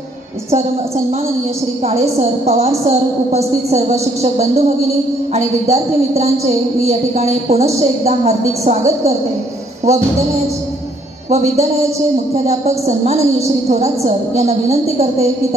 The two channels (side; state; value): both; normal; correlation 0.66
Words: सन्माननीय श्री काळे सर, पवार सर, उपस्थित सर्व शिक्षक बंधू भगिनी आणि विद्यार्थी मित्रांचे मी या ठिकाणी पुनश्च एकदा हार्दिक स्वागत करते व विद्यालयाचे मुख्याध्यापक सन्माननीय श्री थोरात सर यांना विनंती करते की